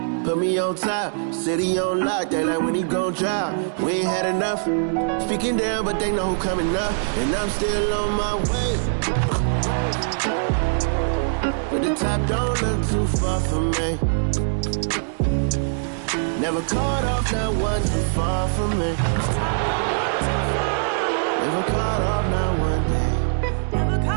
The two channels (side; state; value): left; silent; digital silence